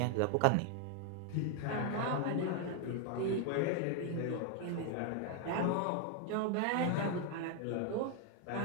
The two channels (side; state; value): both; different; correlation 0.00